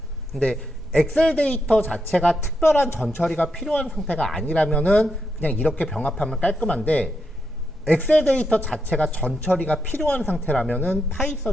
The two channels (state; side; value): normal; both; correlation 0.83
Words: 근데 엑셀 데이터 자체가 특별한 전처리가 필요한 상태가 아니라면은 그냥 이렇게 병합하면 깔끔한데, 엑셀 데이터 자체가 전처리가 필요한 상태라면은